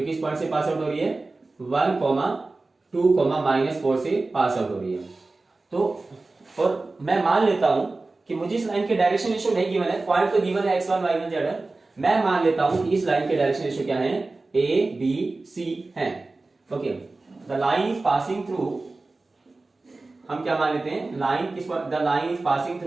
कि इस पॉइंट से पास आउट हो रही है 1, 2, -4 से पास आउट हो रही है। तो और मैं मान लेता हूं कि मुझे इस लाइन के डायरेक्शन रेशियो नहीं गिवन है, पॉइंट तो गिवन है x1 y1 z1, मैं मान लेता हूं कि इस लाइन के डायरेक्शन रेशियो क्या है a b c है, okay. The line is passing through, हम क्या मान लेते हैं, लाइन किस, the line is passing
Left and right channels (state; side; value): quieter; left; 3.4 dB